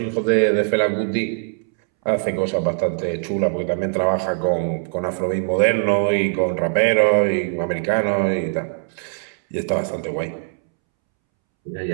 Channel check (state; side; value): silent; left; 65 dB below the other